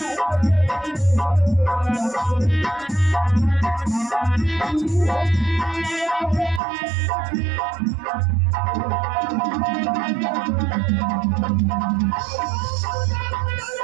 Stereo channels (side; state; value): left; drops out; at 6.6 s